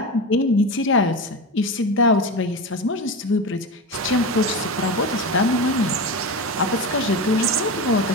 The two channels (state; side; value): normal; both; correlation 0.22